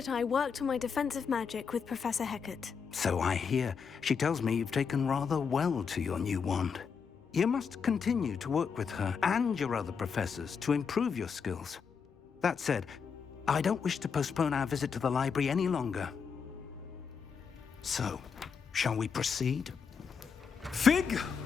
I worked on my defensive magic with Professor Hecat. So I hear. She tells me you've taken rather well to your new wand. You must continue to work with her and your other professors to improve your skills. That said, I don't wish to postpone our visit to the library any longer. So, shall we proceed? Fig!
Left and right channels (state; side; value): quieter; right; 6.2 dB